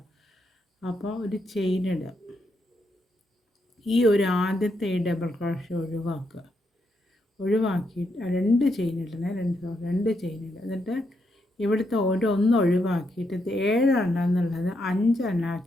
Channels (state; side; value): normal; both; correlation 0.80